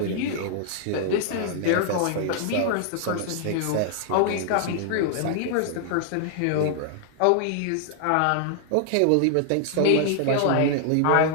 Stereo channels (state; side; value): different; both; correlation 0.00